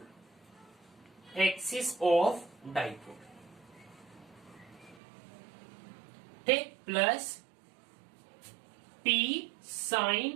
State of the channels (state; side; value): drops out; left; at 5.0 s